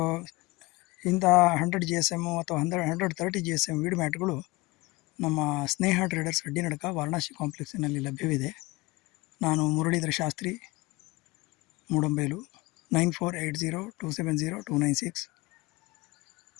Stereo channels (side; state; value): right; quieter; 22.8 dB